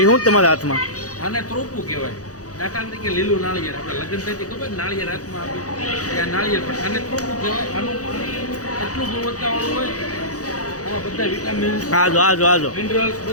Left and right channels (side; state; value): right; late; 0.67 ms